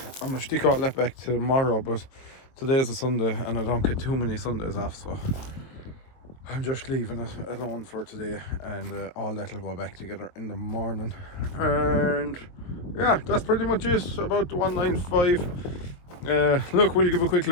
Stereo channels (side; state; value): right; late; 22 ms